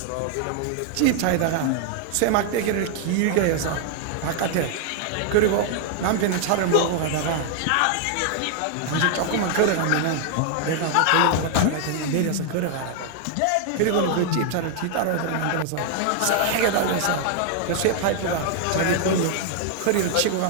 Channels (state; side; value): different; both; correlation 0.00